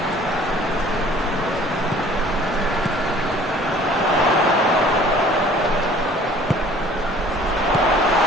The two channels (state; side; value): normal; both; correlation 0.52